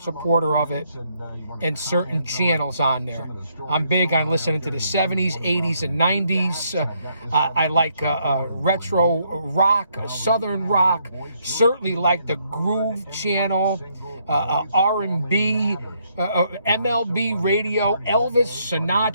supporter of it, and certain channels on there. I'm big on listening to the 70s, 80s, and 90s. I like retro rock, southern rock. Certainly like the Groove channel, R&B, MLB radio, Elvis,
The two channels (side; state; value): both; inverted; correlation -0.72